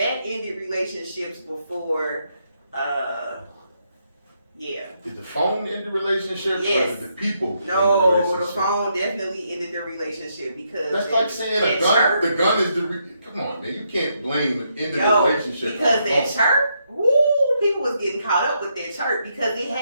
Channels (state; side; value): inverted; both; correlation -0.78